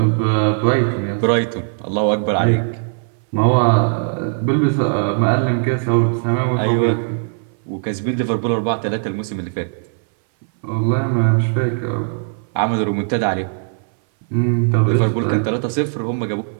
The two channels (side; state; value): left; silent; 62 dB below the other